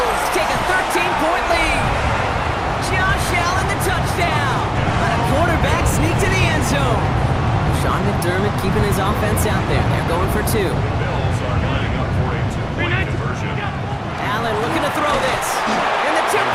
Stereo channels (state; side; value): identical; both; correlation 1.00